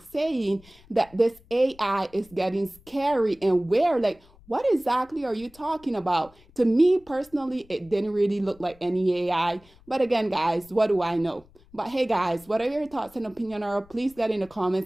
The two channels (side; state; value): left; noise; rumble, 27 dB below the sound